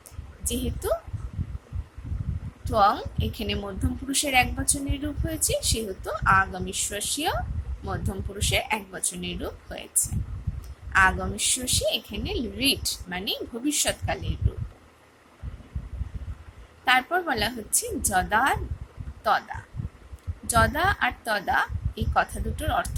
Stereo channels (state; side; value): identical; both; correlation 1.00